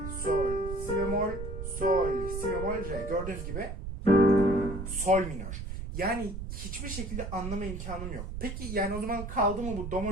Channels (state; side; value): noise; right; rumble, 7 dB below the sound